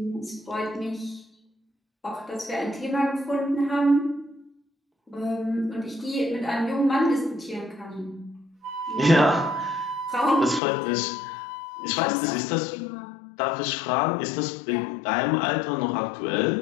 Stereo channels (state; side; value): drops out; right; at 10.6 s